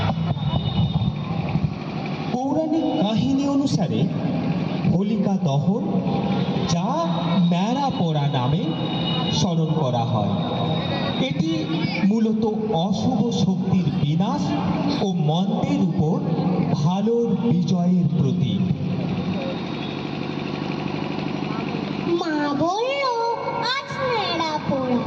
পৌরাণিক কাহিনী অনুসারে হোলিকা দহন, যা ন্যাড়া পোড়া নামে স্মরণ করা হয়, এটি মূলত অশুভ শক্তির বিনাশ ও মন্দের উপর ভালোর বিজয়ের প্রতীক। মা বলল আজ ন্যাড়া পোড়া,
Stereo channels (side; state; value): both; identical; correlation 1.00